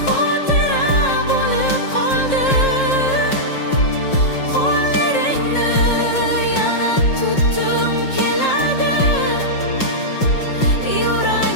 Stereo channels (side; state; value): right; late; 5.6 ms